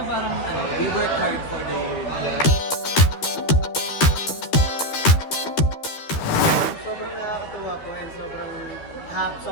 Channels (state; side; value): late; right; 13 ms